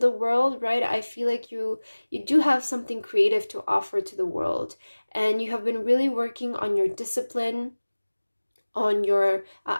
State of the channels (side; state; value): both; inverted; correlation -1.00